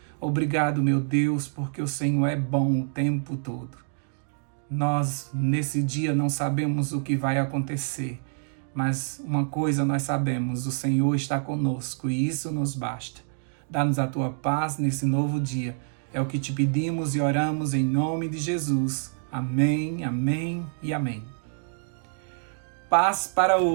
Obrigado, meu Deus, porque o Senhor é bom o tempo todo. Nós, nesse dia, não sabemos o que vai acontecer, mas uma coisa nós sabemos, o Senhor está conosco e isso nos basta. Dá-nos a tua paz nesse novo dia. É o que te pedimos e oramos em nome de Jesus. Amém, amém e amém. Paz para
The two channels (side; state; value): left; silent; 59 dB below the other